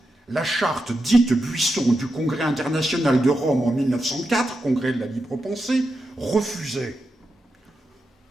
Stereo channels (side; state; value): both; normal; correlation 0.88